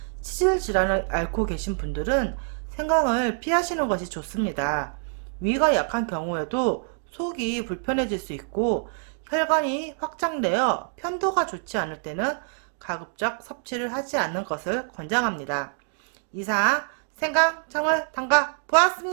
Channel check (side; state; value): left; silent; 61 dB below the other